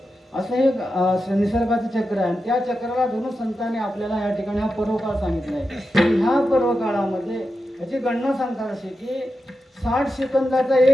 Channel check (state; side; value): normal; both; correlation 0.90